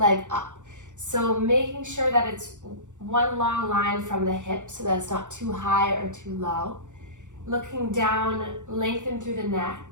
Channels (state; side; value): late; left; 0.85 ms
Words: up. So making sure that it's one long line from the hip so that it's not too high or too low. Looking down, lengthen through the neck.